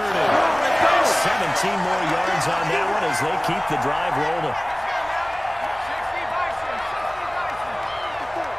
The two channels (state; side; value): noise; left; hum, 25 dB below the sound